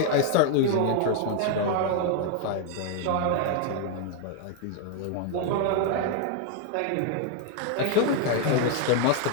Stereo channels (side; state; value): both; different; correlation 0.01